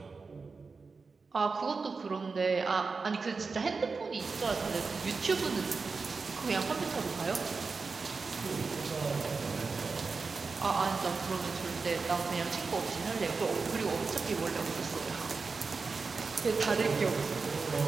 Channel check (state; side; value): quieter; left; 4.5 dB